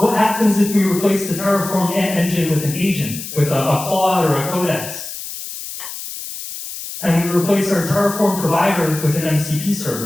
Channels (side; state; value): left; noise; hiss, 9 dB below the sound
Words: happens if we replace the Terraform engine with an agent, with a Claude or a Codex? And we replace our Terraform provider with an MCP